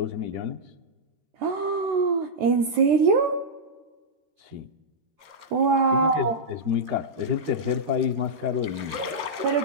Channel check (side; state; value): left; late; 13 ms